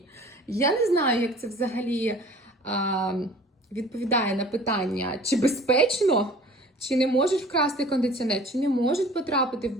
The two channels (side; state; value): both; normal; correlation 0.47